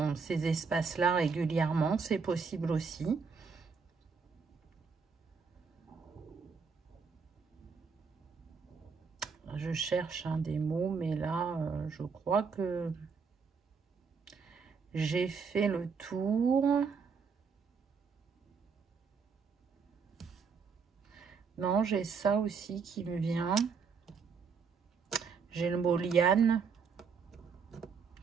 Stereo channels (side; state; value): left; quieter; 5.5 dB